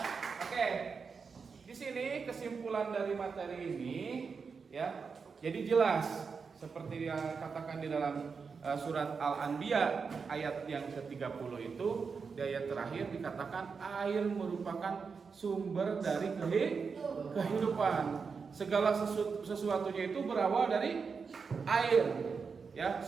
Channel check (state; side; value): quieter; left; 5.4 dB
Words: Oke, di sini kesimpulan dari materi ini ya, jadi jelas seperti yang katakan di dalam surat Al-Anbiya ayat yang ke-30 itu, di ayat terakhir dikatakan air merupakan sumber dari kehidupan. Segala sesuatunya itu berawal dari air. Ya,